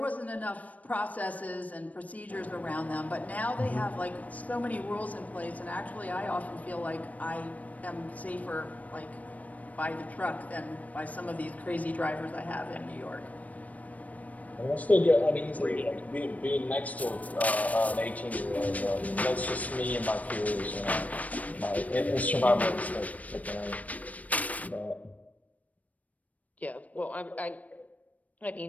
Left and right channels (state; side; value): late; right; 0.070 ms